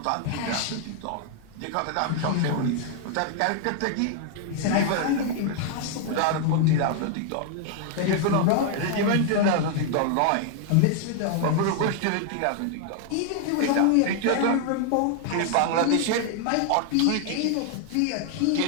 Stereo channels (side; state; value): both; different; correlation 0.00